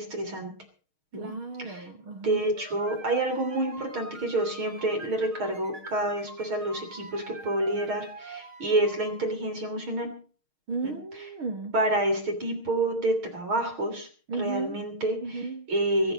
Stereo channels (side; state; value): left; late; 6.4 ms